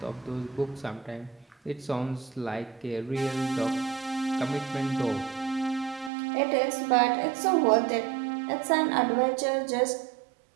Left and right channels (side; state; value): left; drops out; at 6.1 s